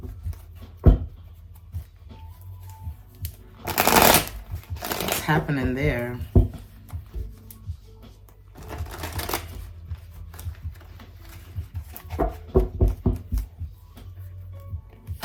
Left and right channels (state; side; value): identical; both; correlation 1.00